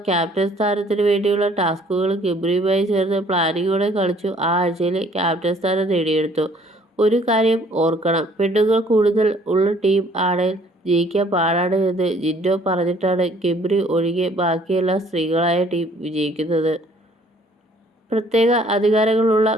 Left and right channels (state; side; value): normal; both; correlation 0.59